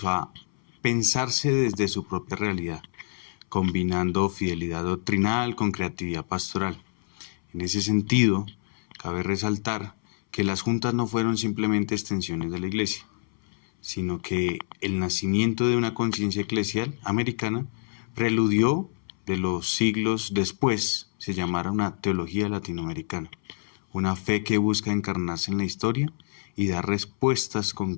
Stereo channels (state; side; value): silent; right; 60 dB below the other